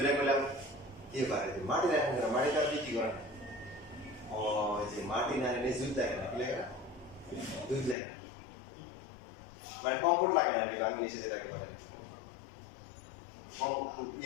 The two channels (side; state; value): right; drops out; at 8.0 s